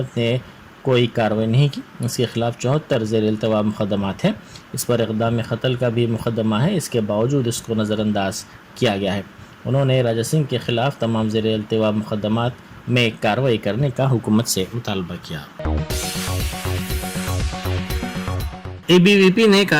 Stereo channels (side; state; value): both; identical; correlation 1.00